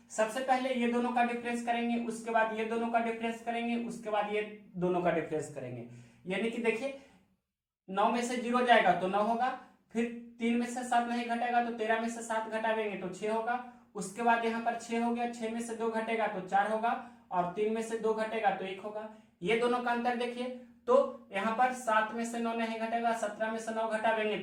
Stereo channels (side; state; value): both; identical; correlation 1.00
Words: सबसे पहले ये दोनों का डिफरेंस करेंगे, उसके बाद ये दोनों का डिफरेंस करेंगे, उसके बाद ये दोनों का डिफरेंस करेंगे। यानी कि देखिए 9 में से 0 जाएगा तो 9 होगा, फिर 3 में से 7 नहीं घटेगा तो 13 में से 7 घटावेंगे तो 6 होगा। उसके बाद यहाँ पर 6 हो गया, 6 में से 2 घटेगा तो 4 होगा और 3 में से 2 घटेगा तो 1 होगा। ये दोनों का अंतर देखिए, तो यहाँ पर 7 में से 9 नहीं घटेगा, 17 में से 9 घटावेंगे